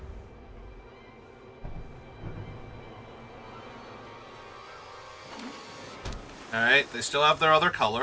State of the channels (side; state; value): both; identical; correlation 1.00